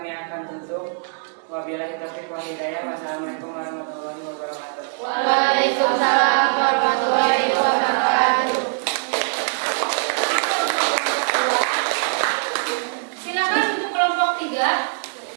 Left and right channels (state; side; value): silent; left; digital silence